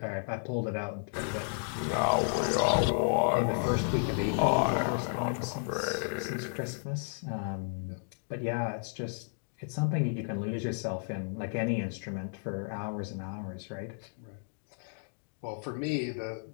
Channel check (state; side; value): silent; right; digital silence